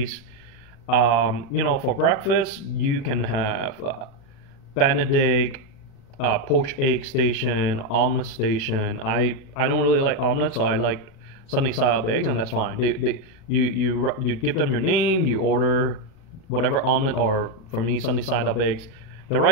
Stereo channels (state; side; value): late; right; 36 ms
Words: For breakfast, you can have Benedict, poached egg station, omelet station. I don't really like omelet, so I like sunny side up eggs, and that's fine. You give them your name, you order whatever omelet, or for me sunny side up eggs. They